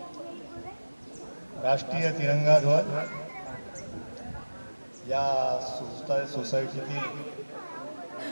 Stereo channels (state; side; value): inverted; both; correlation -1.00